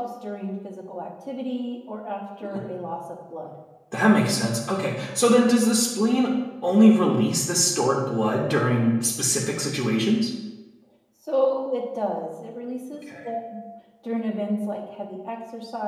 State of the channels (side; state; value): both; identical; correlation 1.00